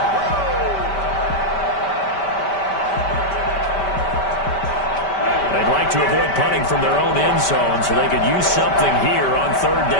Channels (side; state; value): right; late; 5.1 ms